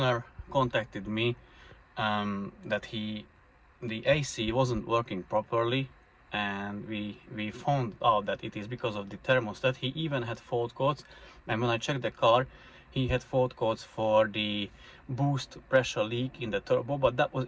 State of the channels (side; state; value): both; identical; correlation 1.00